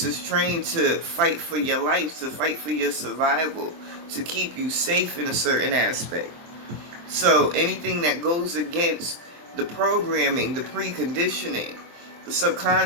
is trained to fight for your life, to fight for your survival, to keep you safe in a certain aspect. So anything that goes against the programming, the preconditioning, the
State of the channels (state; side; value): late; left; 23 ms